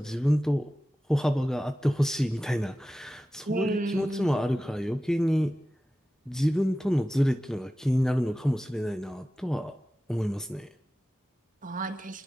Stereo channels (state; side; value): normal; both; correlation 0.95